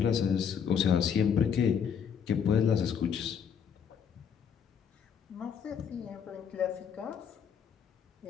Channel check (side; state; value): right; quieter; 7.4 dB